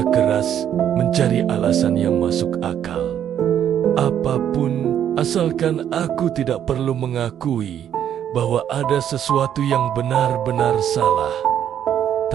keras mencari alasan yang masuk akal. Apapun, asalkan aku tidak perlu mengakui bahwa ada sesuatu yang benar-benar salah.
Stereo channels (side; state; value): left; quieter; 9.8 dB